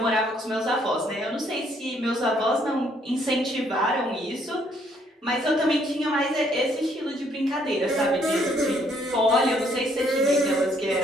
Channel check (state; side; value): normal; both; correlation 0.67